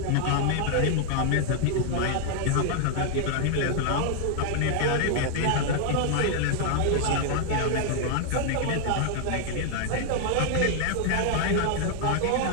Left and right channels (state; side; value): different; both; correlation 0.00